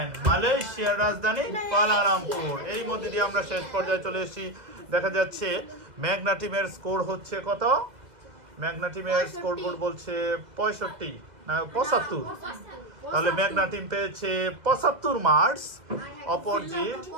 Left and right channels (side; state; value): left; late; 2.0 ms